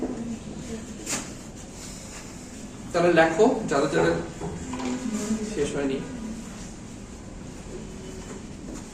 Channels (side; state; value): both; identical; correlation 1.00